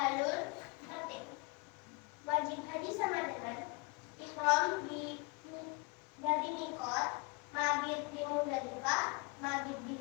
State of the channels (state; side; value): quieter; right; 29.8 dB